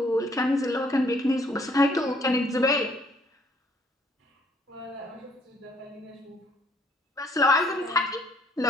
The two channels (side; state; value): both; normal; correlation 0.65